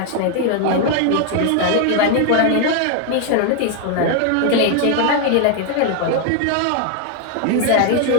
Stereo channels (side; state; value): both; different; correlation 0.00